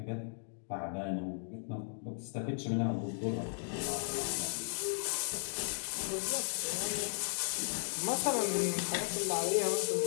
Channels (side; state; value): right; silent; digital silence